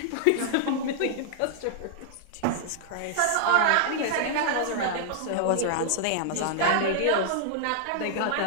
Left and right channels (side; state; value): both; different; correlation -0.01